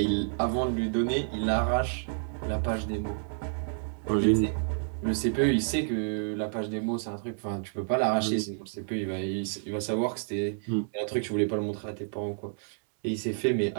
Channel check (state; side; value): silent; left; digital silence